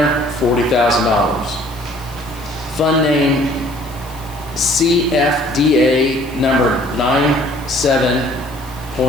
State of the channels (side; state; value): left; noise; hiss, 21 dB below the sound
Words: $40,000. Fund name CFDA number